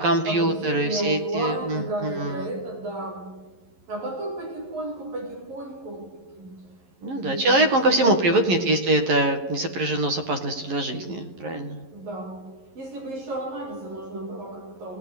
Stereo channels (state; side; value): late; left; 11 ms